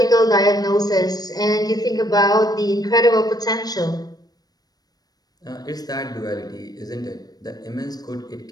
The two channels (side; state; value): right; late; 0.19 ms